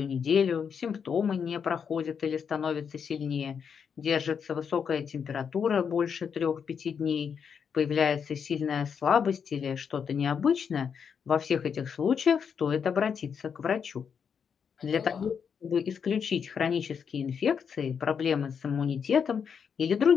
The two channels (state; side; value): quieter; right; 6.9 dB